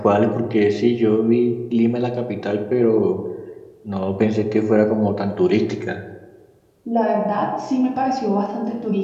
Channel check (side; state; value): both; identical; correlation 1.00